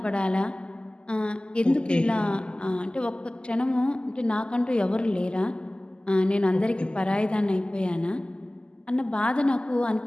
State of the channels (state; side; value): late; right; 0.049 ms